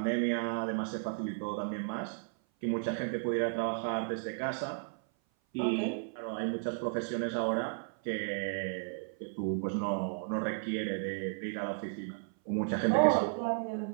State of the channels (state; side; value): silent; left; 55 dB below the other